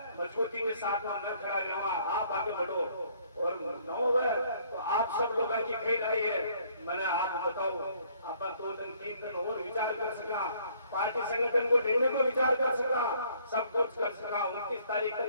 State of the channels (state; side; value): inverted; both; correlation -0.63